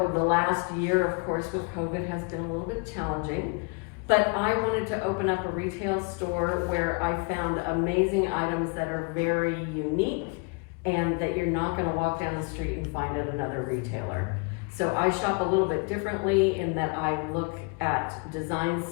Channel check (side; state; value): right; quieter; 32.2 dB